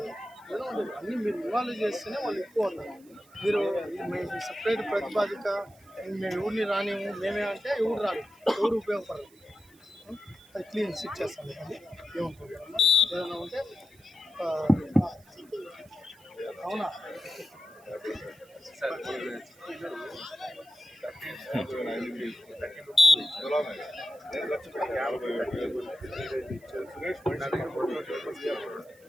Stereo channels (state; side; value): noise; right; hiss, 28 dB below the sound